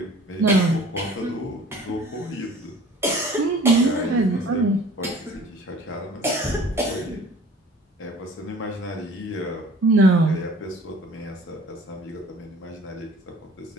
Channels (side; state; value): both; normal; correlation 0.49